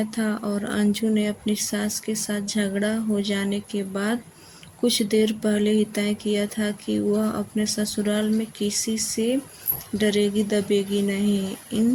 था और अंजू ने अपनी सास के साथ झगड़ा हो जाने के बाद कुछ देर पहले ही तय किया था कि वह अपने ससुराल में किसी से डरेगी दबेगी नहीं।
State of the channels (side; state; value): both; identical; correlation 1.00